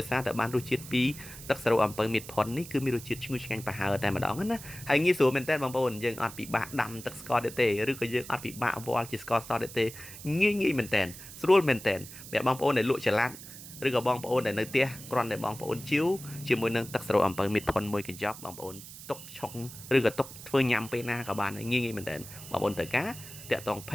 យសារតែបានរសជាតិពីទឹកសេរ៉ូអំពៅមីតផុននេះគឺមានរសជាតិឈ្ងុយឆ្ងាញ់ប្រហើរតែម្ដងណាហើយងាយស្រួលមែនតើបងប្អូនយើងអត់ពិបាកដាំទឹកស្ករទេឬក៏យើងអត់ពិបាកវល់ជាស្ករសទេងាយមែនតើស្រួលមែនតើអ្នកបងប្អូនដែលលក់ចល័តឬក៏បងប្អូនដែលនៅផ្ទះគ្រាន់តែបងប្អូនជីវជាមួយនឹងទឹកសេរ៉ូអំពៅមីតផុនមួយកញ្ចប់បងប្អូនទុកឆុងឬក៏ទុកធ្វើញ៉ាំពេលណាក៏បានងាយមែនតើបងប្អូនត្រូវការតាក់ទង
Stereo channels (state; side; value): noise; right; hiss, 14 dB below the sound